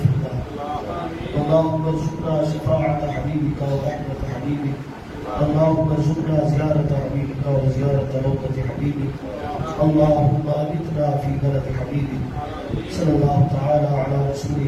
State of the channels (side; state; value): both; identical; correlation 1.00